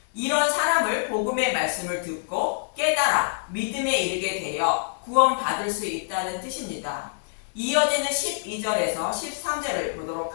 이런 사람을 복음의 말씀을 듣고 깨달아 믿음에 이르게 되어 구원받을 수 있다는 뜻입니다. 이어지는 12절에서 13절을 보도록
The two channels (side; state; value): right; silent; 61 dB below the other